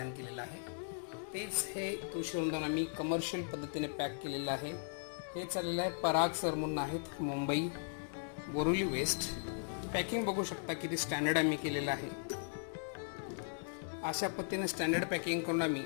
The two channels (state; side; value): silent; right; digital silence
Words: केलेलं आहे. तेच हे तुळशी वृंदावन आम्ही कमर्शियल पद्धतीने पॅक केलेलं आहे. हे चाललेलं आहे पराग सर म्हणून आहेत, मुंबई बोरिवली वेस्ट. पॅकिंग बघू शकता किती स्टँडर्ड आम्ही केलेलं आहे. अशा पद्धतीने स्टँडर्ड पॅकिंग करून आम्ही